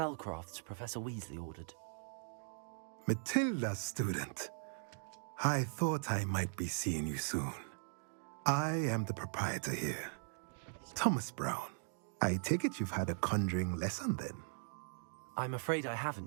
Professor Weasley ordered. Matilda, student. I thought I might be seeing you soon. I am the proprietor here, Thomas Brown. I take it you've had a conjuring lesson then? I'm afraid I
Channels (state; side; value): silent; left; digital silence